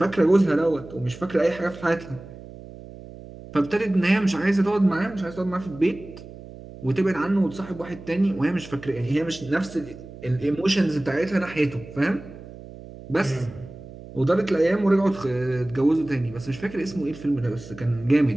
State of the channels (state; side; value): noise; right; hum, 16 dB below the sound